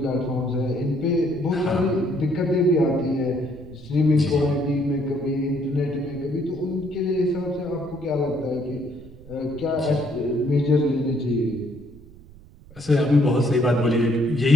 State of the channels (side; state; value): right; noise; rumble, 21 dB below the sound